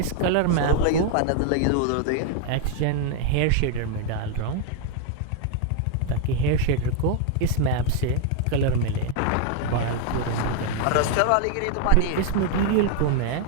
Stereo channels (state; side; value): different; both; correlation 0.01